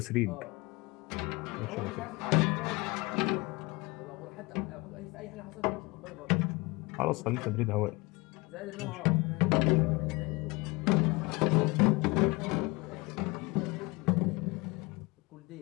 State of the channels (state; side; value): quieter; right; 25.0 dB